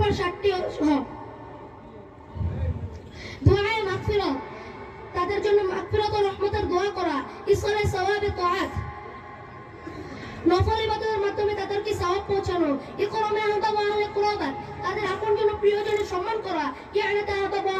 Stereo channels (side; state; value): both; identical; correlation 1.00